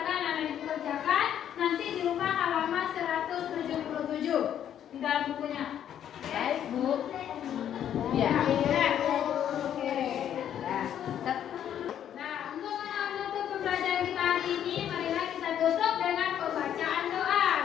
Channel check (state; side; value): quieter; right; 10.0 dB